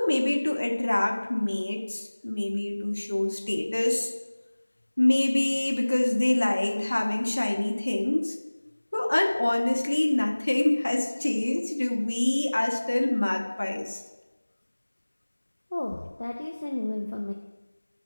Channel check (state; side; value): inverted; both; correlation -1.00